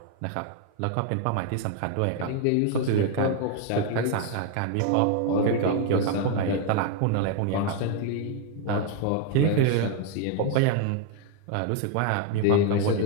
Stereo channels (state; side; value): different; both; correlation 0.00